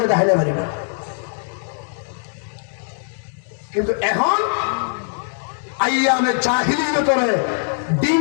দেখাইলে পারি না কিন্তু এখন আইয়ামে জাহিলিয়তরে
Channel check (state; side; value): silent; right; digital silence